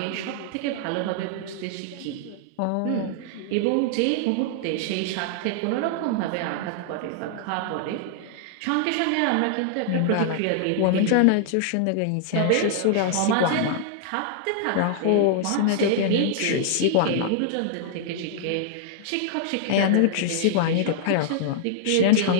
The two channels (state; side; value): different; both; correlation -0.01